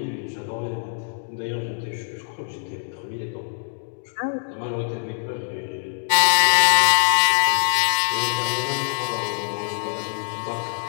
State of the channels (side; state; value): right; silent; digital silence